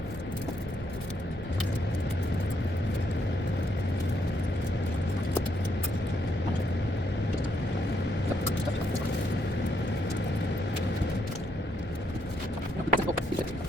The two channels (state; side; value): normal; both; correlation 0.75